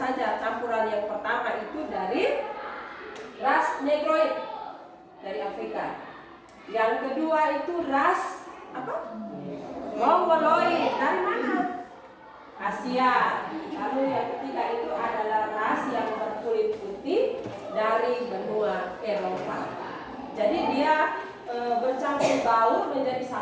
Campuran yang pertama itu dari ras Negroid dari Afrika. Yang kedua itu ras Mongoloid dari mana? Asia. Lalu yang ketiga itu adalah ras yang berkulit putih dari benua Eropa. Jadi dia bercampur baur menjadi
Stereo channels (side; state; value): both; identical; correlation 1.00